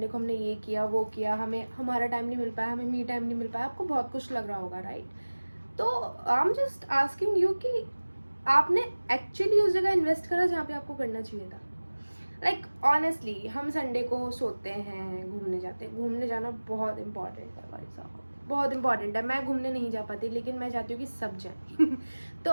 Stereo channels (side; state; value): both; inverted; correlation -1.00